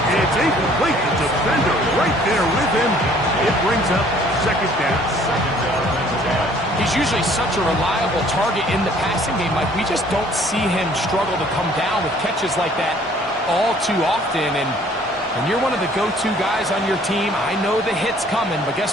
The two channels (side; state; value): both; normal; correlation 0.57